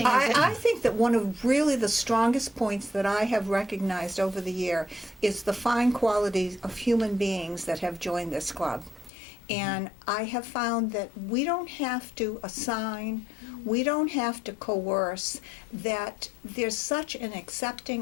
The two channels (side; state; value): right; drops out; at 9.1 s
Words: is that I think that one of really the strongest points that I have recognized over the year is the fine qualities of human beings that have joined this club. And I have found that we don't have to assign, we don't have to coerce, that there's such an